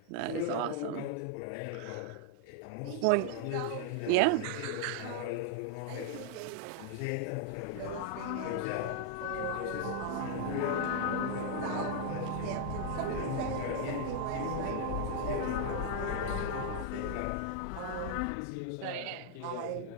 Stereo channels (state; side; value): different; both; correlation 0.00